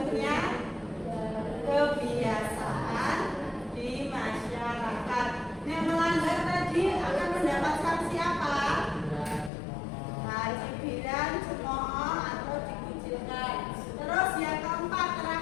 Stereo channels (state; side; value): drops out; right; at 9.5 s